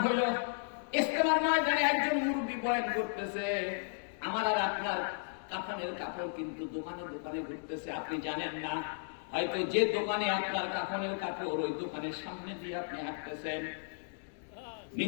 হইল, ইজতেমার ময়দানে একজন মুরব্বী বয়ান করতেছে, আমার আর আপনার কাফনের কাপড় কিন্তু দোকানে দোকানে ঘুরতেছে। আপনি জানেন না, হয়তো যে দোকানে আপনার কাফনের কাপড়, ওই দোকানের সামনে দিয়ে আপনি হাঁটতেছেন।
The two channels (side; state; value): right; silent; digital silence